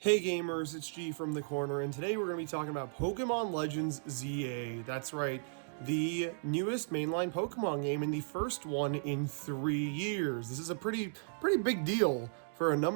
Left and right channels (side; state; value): left; silent; digital silence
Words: Hey gamers, it's G from the corner, and today we're going to be talking about Pokemon Legends ZA. That's right, the newest mainline Pokemon game and the first one in 3 years. This is a pretty big deal for a